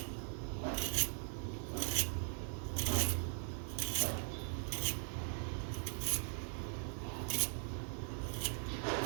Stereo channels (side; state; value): left; silent; 51 dB below the other